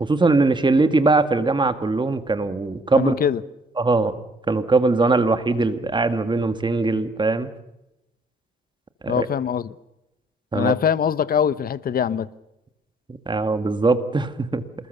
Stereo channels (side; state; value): both; normal; correlation 0.62